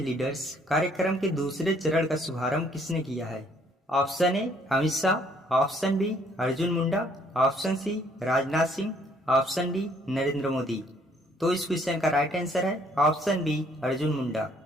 कार्यक्रम के दूसरे चरण का शुभारंभ किसने किया है? Option A Amit Shah, option B Arjun Munda, option C Rajnath Singh, option D Narendra Modi. तो इस क्वेश्चन का राइट आंसर है ऑप्शन बी अर्जुन मुंडा।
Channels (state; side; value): normal; both; correlation 0.64